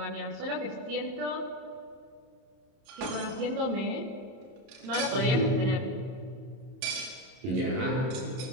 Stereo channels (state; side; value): late; left; 31 ms